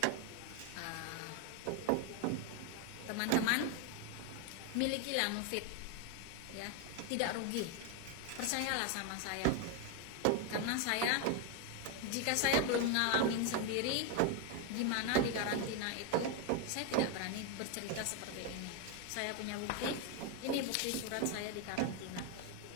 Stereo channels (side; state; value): both; different; correlation 0.01